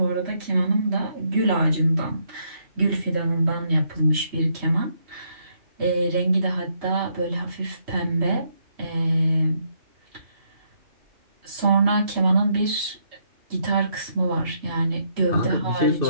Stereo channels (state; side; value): late; left; 3.1 ms